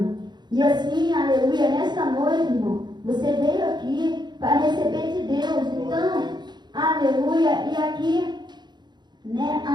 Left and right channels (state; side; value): late; left; 0.21 ms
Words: E assim, aleluia, nessa noite, irmão, você veio aqui para receber de Deus. Então, aleluia. E aqui, né,